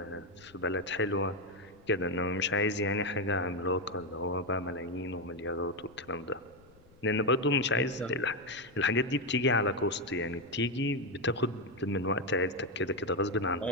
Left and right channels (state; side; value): noise; left; rumble, 27 dB below the sound